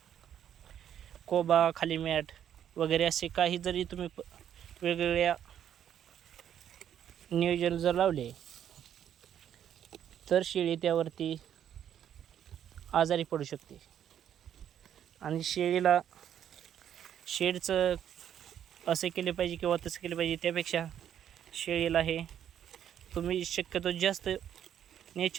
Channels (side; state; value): left; quieter; 9.8 dB